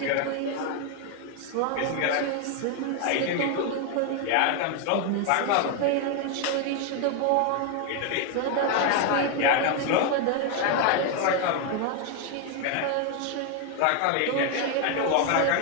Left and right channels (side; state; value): both; different; correlation 0.01